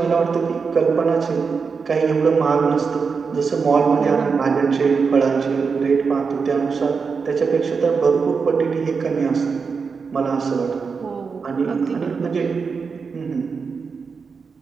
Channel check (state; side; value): quieter; left; 5.3 dB